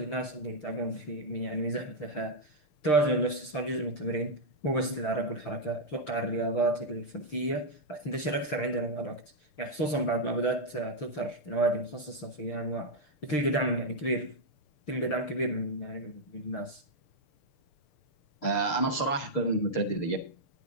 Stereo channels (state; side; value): late; right; 6.7 ms